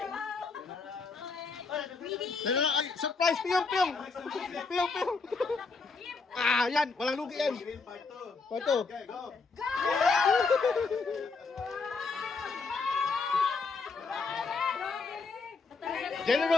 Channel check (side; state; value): right; quieter; 4.4 dB